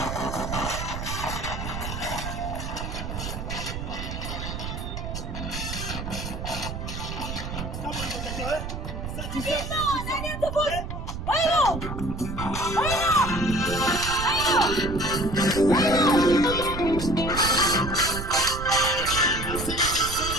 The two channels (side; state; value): right; noise; rumble, 6 dB below the sound